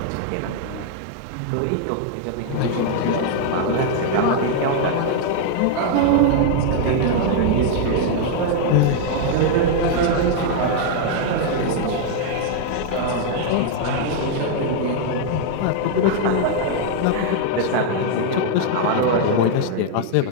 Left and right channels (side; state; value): both; different; correlation 0.00